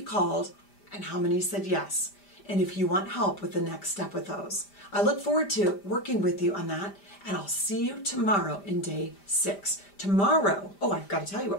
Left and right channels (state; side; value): late; right; 5.0 ms